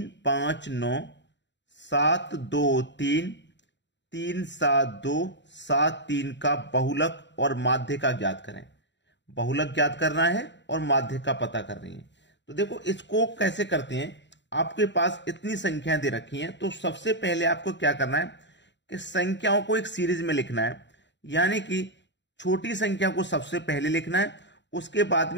5, 9, 7, 2, 3, 3, 7, 2, 7, 3 का बहुलक और माध्य का ज्ञात करें। बहुलक ज्ञात करना है और माध्य का पता कर रही है। तो देखो, इसको कैसे करते हैं। आपके पास इतनी संख्याएं दे रखी हैं, तो सबसे पहले आपको क्या करना है कि संख्याओं को एक सीरीज में लिखना है, यानी कि छोटी संख्या को सबसे पहले लिखना है, उसके बाद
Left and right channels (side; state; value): right; late; 0.52 ms